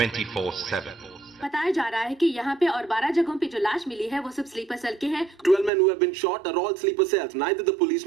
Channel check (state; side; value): drops out; left; at 5.7 s